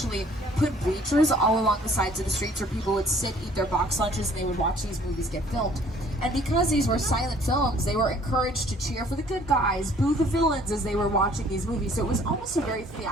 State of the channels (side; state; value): both; normal; correlation 0.57